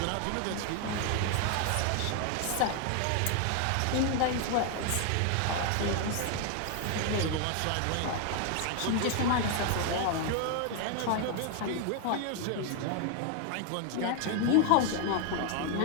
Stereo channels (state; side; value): different; both; correlation 0.01